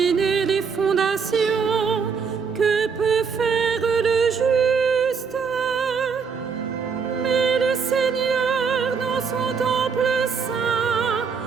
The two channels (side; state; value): left; quieter; 5.8 dB